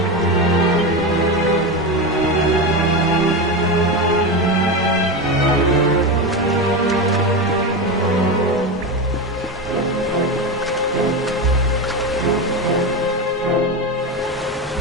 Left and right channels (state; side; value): normal; both; correlation 0.17